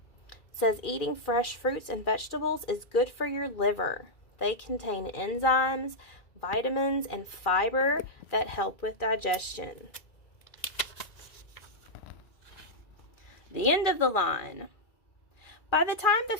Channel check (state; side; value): late; right; 2.4 ms